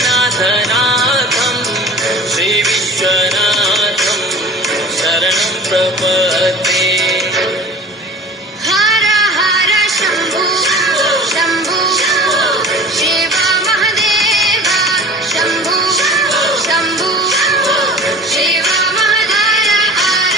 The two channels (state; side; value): normal; both; correlation 0.40